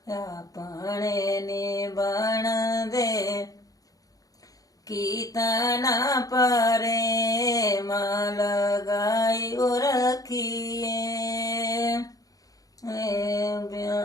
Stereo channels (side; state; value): right; late; 0.17 ms